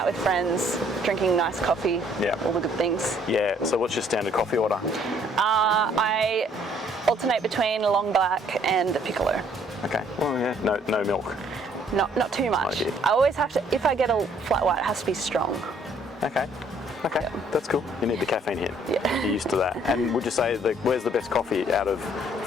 with friends, drinking nice coffee, all the good things. Yeah, so what's your standard coffee order? I alternate between a long black and a piccolo. Okay, well, no milk. Not too much. I always have to, if I get a flat white, it has to be strong. Okay, that's cool. You need the caffeine hit. Yeah. You're used to that. And would you say, where's the best coffee out of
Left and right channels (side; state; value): both; normal; correlation 0.62